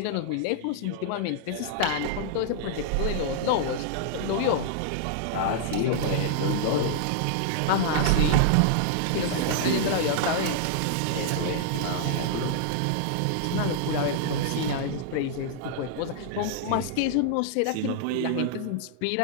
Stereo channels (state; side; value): different; both; correlation -0.01